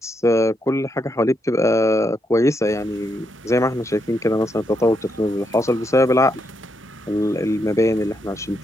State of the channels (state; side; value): normal; both; correlation 0.80